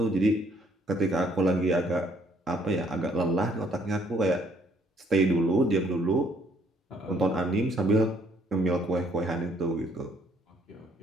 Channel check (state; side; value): normal; both; correlation 0.66